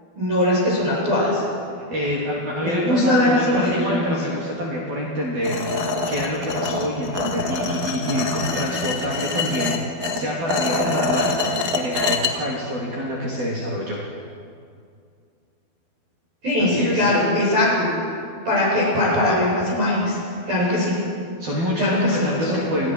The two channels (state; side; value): late; left; 12 ms